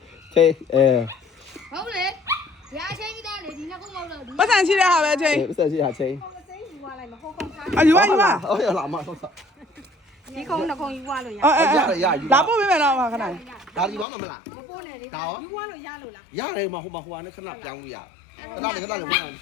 ဟုတ်လေဒီအချင်းကြီးသားလေဒီနှစ်ခုမဟုတ်တော့ဒီ ပတ်စံရှိတဲ့ဟာပဲချင်း ပတ်စံရှိတာချိန် အယူပါ ဟုတ်ရလားမဟုတ်တာ ဒီကုန်းနှစ်ကုန်းယူသွားလို့ရ လာပို့ပေးမယ်တော့ခဏ ဒါဒီဘာမှမလား မပို့နဲ့လေ ဒါရော ယူသွားလို့ရလို့လား ရတယ်မဟိုမှာနဲ့ခဏပြောင်းလို့ရတယ်ခဏလေး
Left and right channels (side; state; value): right; drops out; at 14.1 s